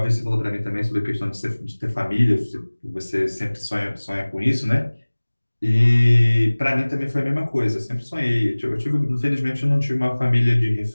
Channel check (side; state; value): both; inverted; correlation -1.00